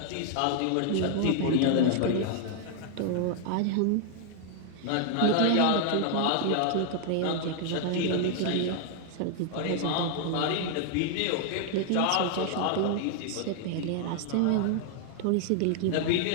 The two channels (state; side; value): different; both; correlation 0.00